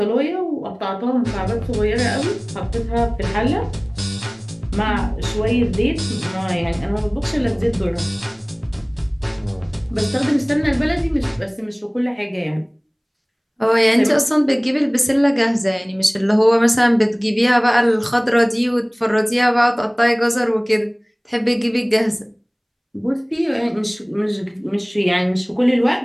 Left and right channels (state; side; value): identical; both; correlation 1.00